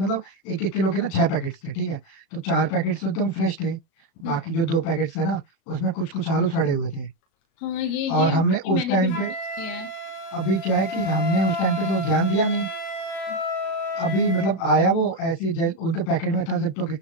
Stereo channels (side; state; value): right; late; 36 ms